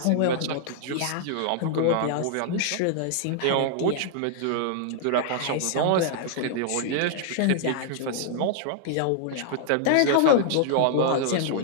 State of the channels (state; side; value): different; both; correlation -0.01